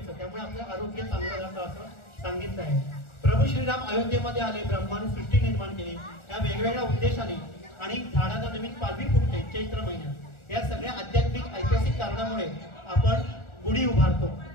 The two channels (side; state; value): right; late; 1.4 ms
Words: त्यामुळे आपलं आरोग्य चांगलं राहतं असं सांगितलं आहे. प्रभू श्रीराम अयोध्येमध्ये आले, ब्रह्माने सृष्टी निर्माण केली या वेगवेगळ्या उद्देशाने आणि झाडाला नवीन पालवी फुटते चैत्र महिन्यात. या सगळ्या आध्यात्मिक ऐतिहासिक कारणामुळे आपण गुढी उभारतो.